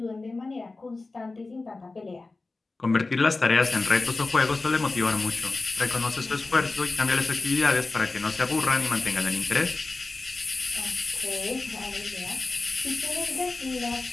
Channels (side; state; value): right; quieter; 3.5 dB